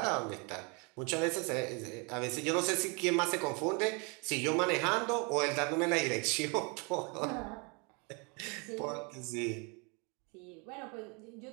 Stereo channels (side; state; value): left; quieter; 32.2 dB